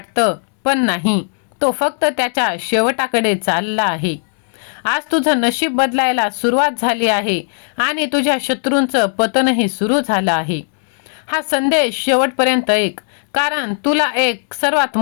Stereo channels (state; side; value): silent; right; digital silence